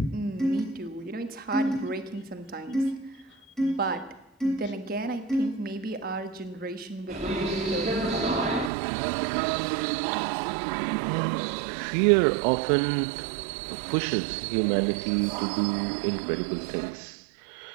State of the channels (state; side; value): drops out; left; at 8.7 s